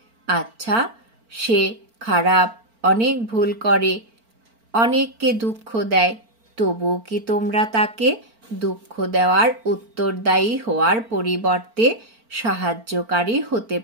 আচ্ছা, সে খারাপ, অনেক ভুল করে, অনেককে দুঃখ দেয়, তবুও কি তোমরা তাকে দুঃখ দেওয়ার উত্তরদায়ী হওয়ার পরিবর্তে সাহায্যকারী হতে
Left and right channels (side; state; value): left; late; 4.4 ms